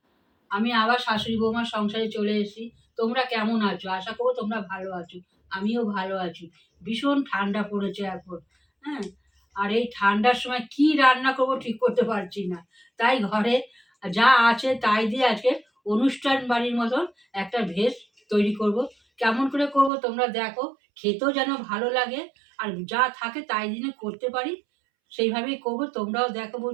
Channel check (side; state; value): left; drops out; at 19.9 s